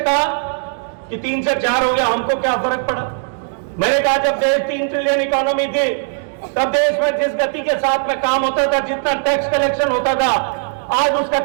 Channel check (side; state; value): left; silent; digital silence